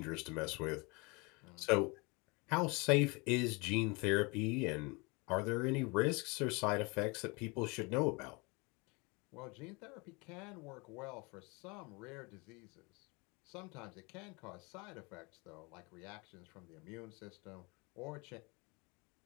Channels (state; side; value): quieter; right; 28.1 dB